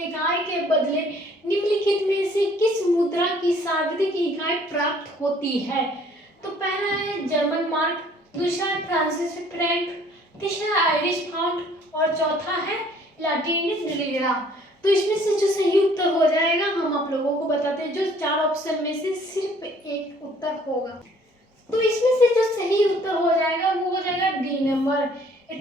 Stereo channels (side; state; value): both; normal; correlation 0.58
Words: इकाई के बदले निम्नलिखित में से किस मुद्रा की सर्वाधिक इकाई प्राप्त होती है। तो पहला है जर्मन मार्क, दूसरा है फ्रांसीसी फ्रैंक, तीसरा आयरिश पाउंड और चौथा है लैटिनिस लिरा। तो इसमें से जो सही उत्तर हो जाएगा हम आप लोगों को बताते हैं, जो 4 ऑप्शन में से सिर्फ एक उत्तर होगा। तो इसमें से जो सही उत्तर हो जाएगा वो हो जाएगा डी नंबर,